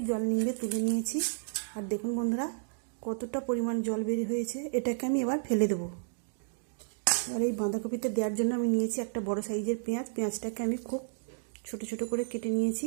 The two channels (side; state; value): left; silent; digital silence